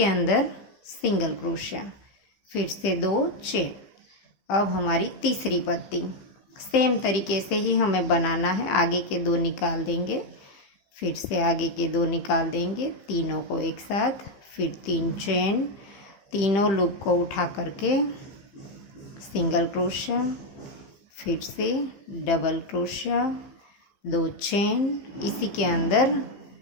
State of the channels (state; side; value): late; right; 15 ms